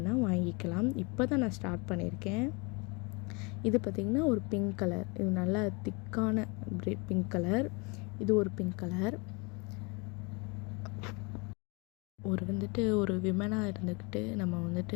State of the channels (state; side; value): quieter; right; 29.7 dB